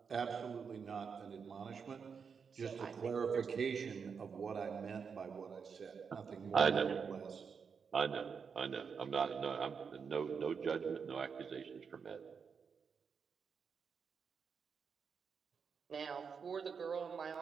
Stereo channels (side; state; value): left; quieter; 6.1 dB